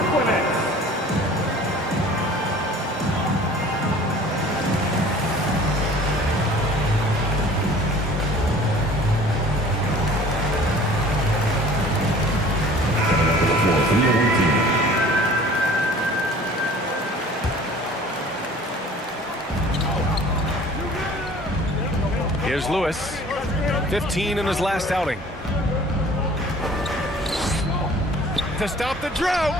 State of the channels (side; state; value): both; normal; correlation 0.48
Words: Nets. Coming onto the floor for the other team. Here's Lewis. 15 in his last outing. To stop the drought.